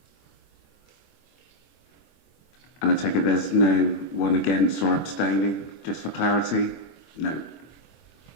And I take it there's no one against or abstaining, just for clarity? No.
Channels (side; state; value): right; late; 24 ms